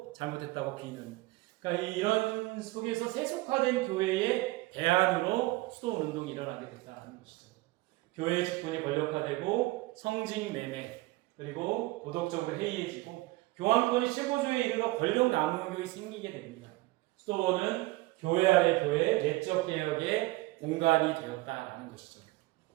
잘못했다고 비는. 그러니까 이런 속에서 세속화된 교회의 대안으로 수도 운동이 일어나게 됐다는 것이죠. 교회의 직분이 권력화되고 성직 매매 그리고 도덕적으로 해이해지고 교황권이 최고조에 이르러 권력 남용이 생기게 됩니다. 수도원은 교회 아래 교회, 내적 개혁의 공간이 되었다라는 것이죠.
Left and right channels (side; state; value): left; quieter; 20.6 dB